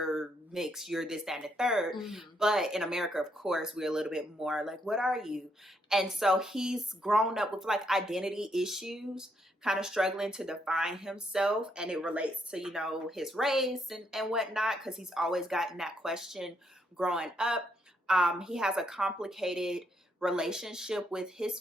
mixed, you're this, that, and the third. Mm-hmm. But in America, of course, we're a little bit more like, what are you? And so he's grown up with like identity issues, kind of struggling to define himself. And it relates to, his race and whatnot, because he's always gotten that question growing up. He has a complicated relationship with his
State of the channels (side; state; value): both; normal; correlation 0.75